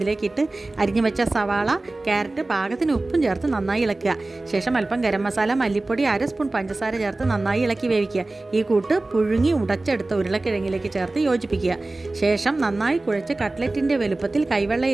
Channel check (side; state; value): left; quieter; 3.0 dB